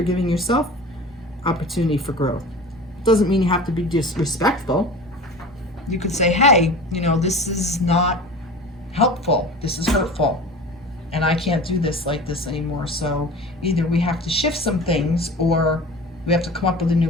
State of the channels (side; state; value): both; normal; correlation 0.37